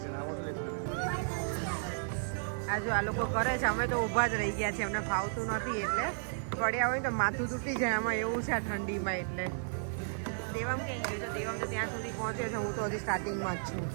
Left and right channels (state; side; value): silent; left; digital silence